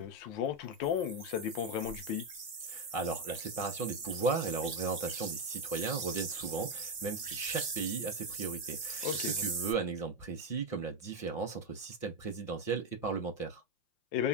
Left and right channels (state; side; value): late; right; 5.7 ms